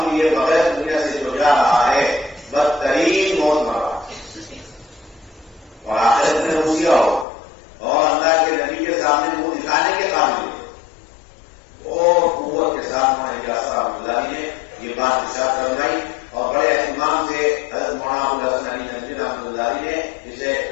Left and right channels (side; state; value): right; drops out; at 7.2 s